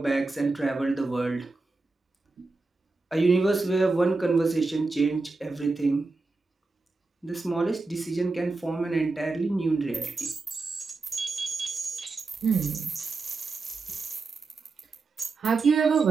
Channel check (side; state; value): left; quieter; 3.7 dB